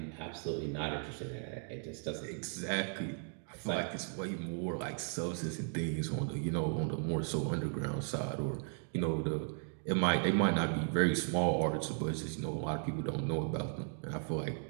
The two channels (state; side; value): silent; left; 54 dB below the other